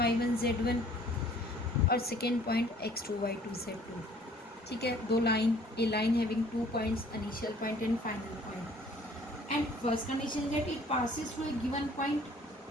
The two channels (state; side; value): normal; both; correlation 0.55